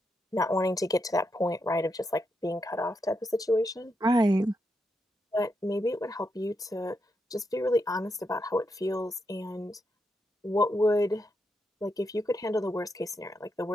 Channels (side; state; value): both; normal; correlation 0.83